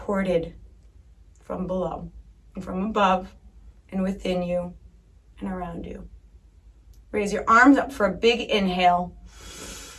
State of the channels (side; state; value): both; identical; correlation 1.00